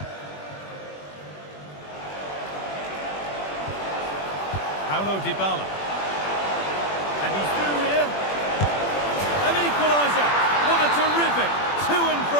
Paulo Dybala. And he's through here. An equaliser. What a terrific to and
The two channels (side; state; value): right; late; 21 ms